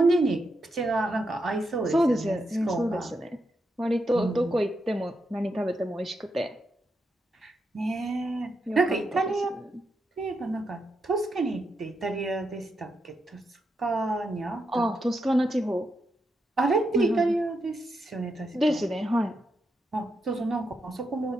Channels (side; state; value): both; normal; correlation 0.83